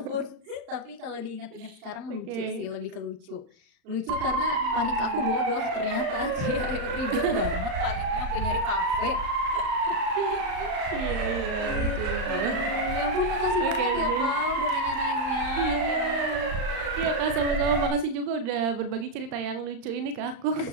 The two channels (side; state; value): left; late; 35 ms